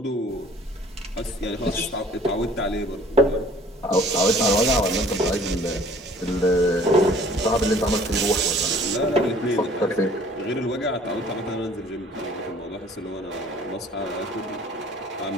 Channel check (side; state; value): both; normal; correlation 0.53